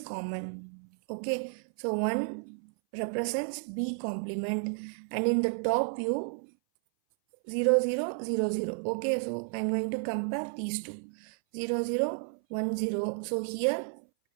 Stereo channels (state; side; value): silent; left; 56 dB below the other